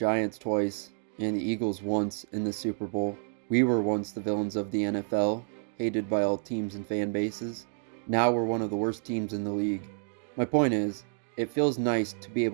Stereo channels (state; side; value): silent; left; digital silence